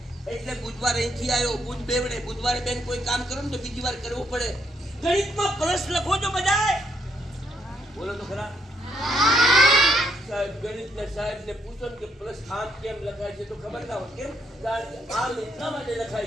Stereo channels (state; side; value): normal; both; correlation 0.73